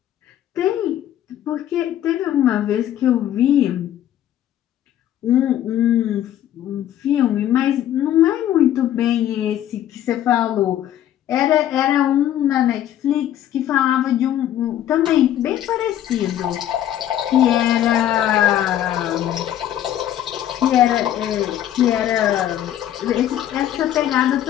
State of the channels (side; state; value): right; quieter; 11.6 dB